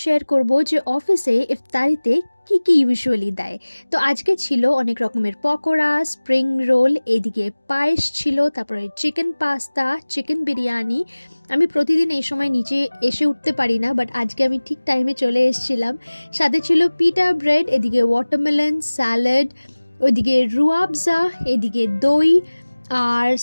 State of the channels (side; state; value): both; inverted; correlation -1.00